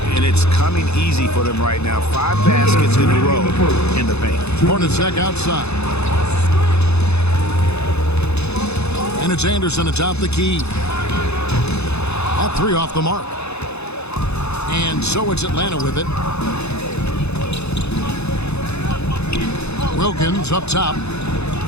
And it's coming easy for them right now. 5 baskets in a row in the paint. Hornacek outside. And it's Anderson atop the key. That 3 off the mark. And so it's Atlanta with it. Wilkins up top.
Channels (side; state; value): right; late; 0.80 ms